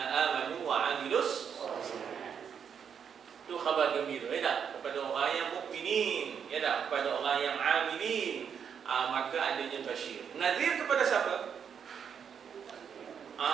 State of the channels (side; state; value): left; quieter; 7.4 dB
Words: amanu wa amilus itu khabar gembira, ya tak? Kepada orang yang mukminin, ya tak? Kepada orang yang amilin, maka adanya basyir. Nadhir kepada siapa?